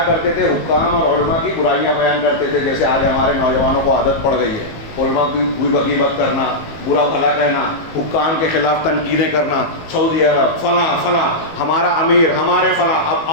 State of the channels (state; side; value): late; right; 18 ms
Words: کرتے تھے؟ حکام اور علماء کی برائیاں بیان کرتے تھے، جیسے آج ہمارے نوجوانوں کو عادت پڑ گئی ہے، علماء کی بوئی بغیبت کرنا، برا بھلا کہنا، حکام کے خلاف تنقیدیں کرنا، سعودی عرب فلاں فلاں، ہمارا امیر، ہمارے فلاں۔ اب